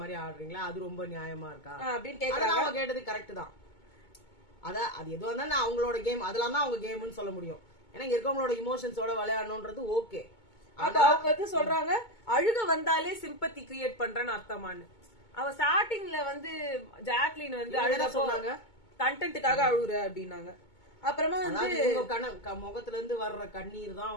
மாதிரி ஆடுறீங்களா? அது ரொம்ப நியாயமா இருக்கா அப்படின்னு கேக்குறாங்க. அவங்க கேட்டது கரெக்ட் தான். அது எதுவா இருந்தாலும் அவங்களோட கேம், அதெல்லாம் தான் அவங்க கேம்னு சொல்ல முடியும். ஏன்னா இங்க இருக்கவங்களோட இமோஷன்ஸோட விளையாடணும்ன்றது ஓகே. அப்ப அவங்க வந்து சொல்றாங்க அழுக வந்தாலே சிம்பத்தி கிரியேட் பண்றேன்னு அர்த்தமானு. அவ ஸ்டார்டிங்ல வந்து ஜாக்லின் வந்து அழுக சொன்னாங்க, கண்டென்ட்டுக்காக அழுகுற அப்படின்னாங்க. அப்புறமா வந்து முகத்துல இருந்து வர்ற கண்ணீர் தான்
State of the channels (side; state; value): right; late; 2.2 ms